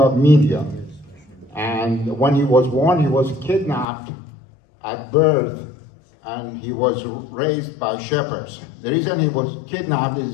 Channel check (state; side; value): drops out; right; at 3.9 s